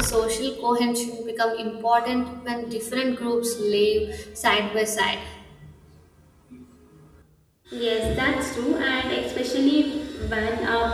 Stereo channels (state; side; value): identical; both; correlation 1.00